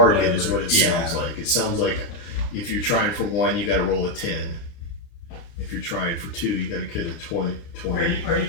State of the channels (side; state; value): right; late; 29 ms